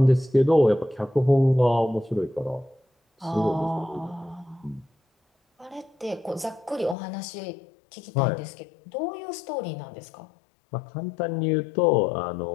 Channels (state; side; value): drops out; right; at 7.0 s